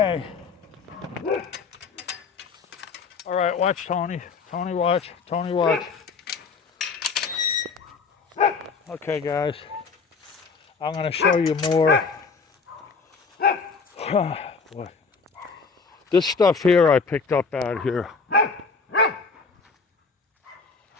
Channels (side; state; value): right; quieter; 4.9 dB